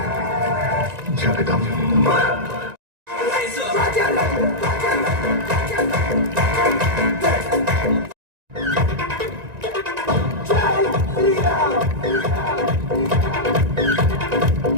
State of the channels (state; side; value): late; left; 1.9 ms